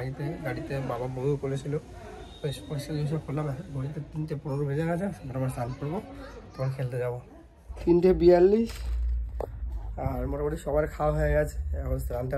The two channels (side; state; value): both; identical; correlation 1.00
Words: গাড়িতে বাবা বমি করেছিল, বেশ পরিষ্কার জিনিসও করলাম। ঘড়িতে 3:15 বেজে গেছে, আবার স্নান করবো, তখন খেলতে যাবো। 3:42 আর মোটামুটি সবার খাওয়া হয়ে গেছে। এখন স্নান